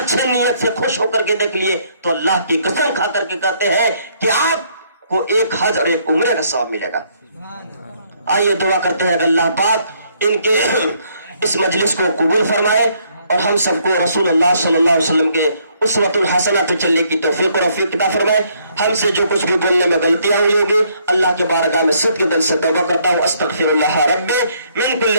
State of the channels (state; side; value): inverted; both; correlation -0.68